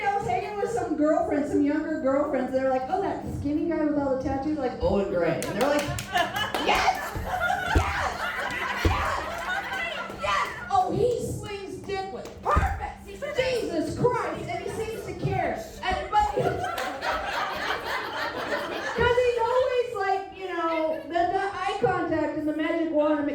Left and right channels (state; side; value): identical; both; correlation 1.00